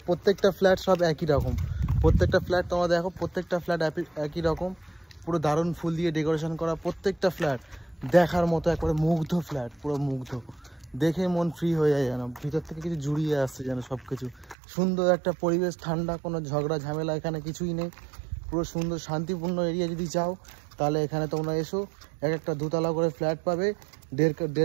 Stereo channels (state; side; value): drops out; left; at 14.6 s